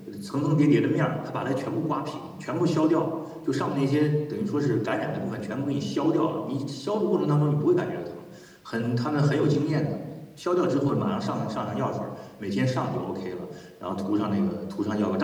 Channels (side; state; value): both; identical; correlation 1.00